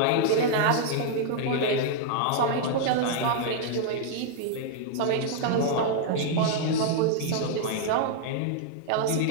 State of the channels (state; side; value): different; both; correlation -0.01